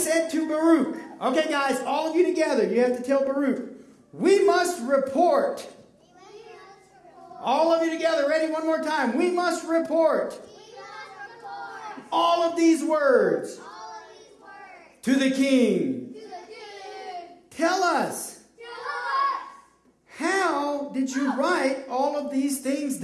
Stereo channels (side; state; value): both; identical; correlation 1.00